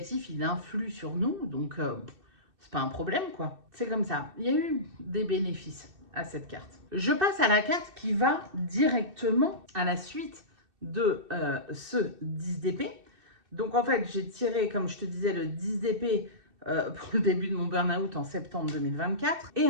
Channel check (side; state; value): left; late; 2.6 ms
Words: il influe sur nous, donc c'est pas un problème, quoi. C'est comme ça. Il y a eu des bénéfices à cette carte. Je passe à la carte qui va directement à la suite de ce 10 d'épée. Donc, en fait, j'ai tiré, comme je te disais, le 10 d'épée pour le début de mon burn-out en septembre 2024.